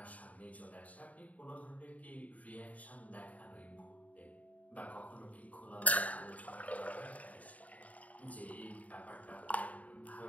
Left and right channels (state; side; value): late; right; 0.070 ms